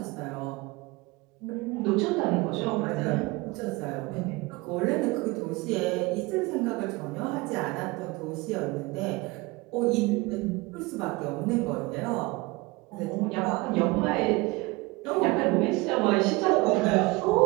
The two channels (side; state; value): left; quieter; 23.3 dB